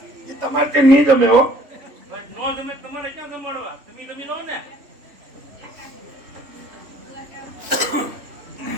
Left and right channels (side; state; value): left; late; 3.5 ms